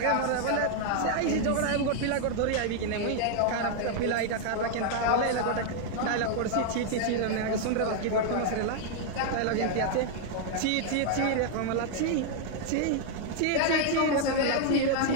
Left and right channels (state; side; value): different; both; correlation 0.00